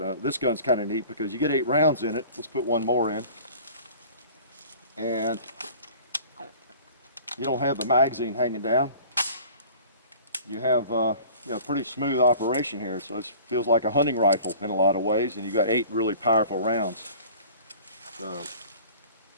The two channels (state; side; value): inverted; both; correlation -0.46